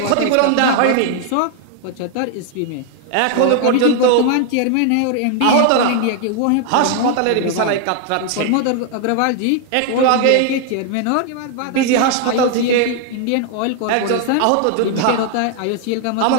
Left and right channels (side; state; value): both; different; correlation 0.00